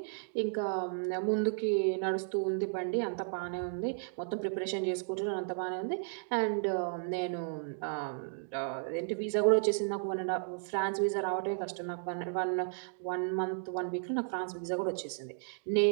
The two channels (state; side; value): silent; left; digital silence